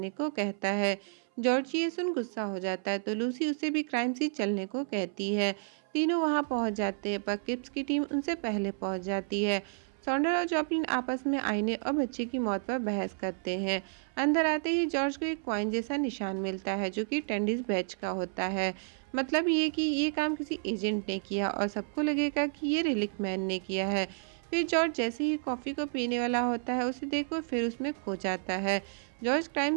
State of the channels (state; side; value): silent; left; 57 dB below the other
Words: को कहता है। जॉर्ज ये सुन गुस्सा हो जाता है तो लूसी उसे भी क्राइम सीन चलने को कहती है। तीनों वहां पहुंच जाते हैं पर किप्स की टीम उनसे पहले पहुंच जाती है। सॉन्डर और जॉपलिन आपस में आईने और बच्चे की मौत पर बहस करते हैं। अंदर आते ही जॉर्ज को एक कॉइन जैसा निशान मिलता है जो कि टेंडिस बैच का होता है। मतलब ये कि ये काम किसी एजेंट ने किया और सबको लगेगा कि ये रिलिक मैन ने किया है। फिर जॉर्ज जैसे ही कॉफ़ी को पीने वाला होता है उसे देखकर फिर उसमें खो जाता है। जॉर्ज